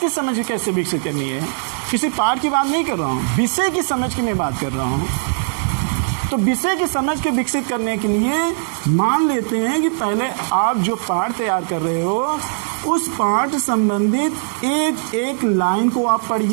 समझ कैसे विकसित करनी है, किसी पाठ की बात नहीं कर रहा हूँ, विषय की समझ की मैं बात कर रहा हूँ। तो विषय की समझ के विकसित करने के लिए मान लेते हैं कि पहले आप जो पाठ तैयार कर रहे हो उस पाठ संबंधित एक एक लाइन को आप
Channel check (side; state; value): left; silent; digital silence